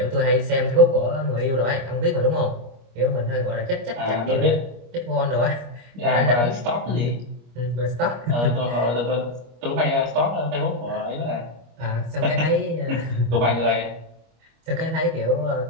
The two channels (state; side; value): late; left; 25 ms